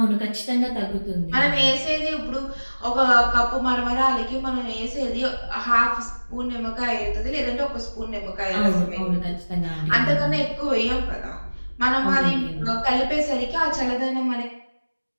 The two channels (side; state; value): both; inverted; correlation -1.00